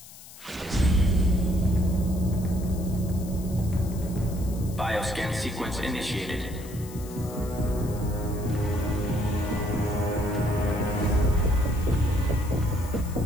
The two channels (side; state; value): left; noise; hiss, 18 dB below the sound